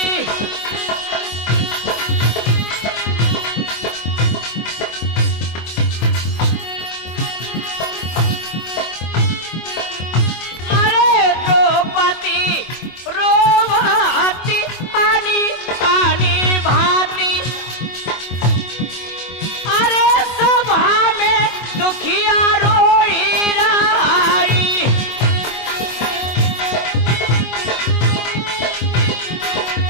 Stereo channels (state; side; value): late; right; 24 ms